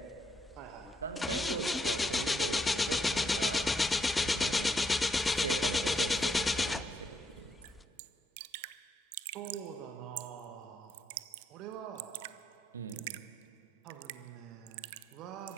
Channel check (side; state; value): both; normal; correlation 0.76